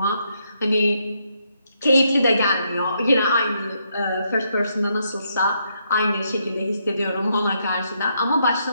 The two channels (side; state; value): both; inverted; correlation -0.76